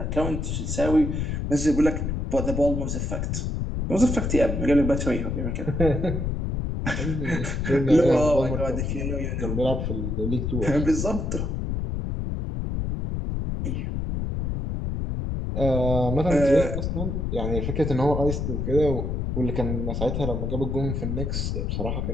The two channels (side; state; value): left; noise; rumble, 2 dB below the sound